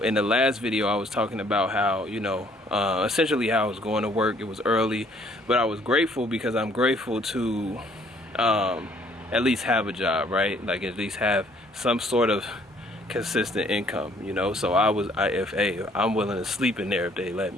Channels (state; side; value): normal; both; correlation 0.62